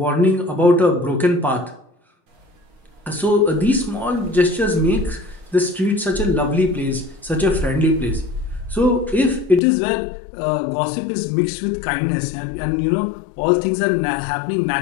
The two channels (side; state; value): right; drops out; at 9.6 s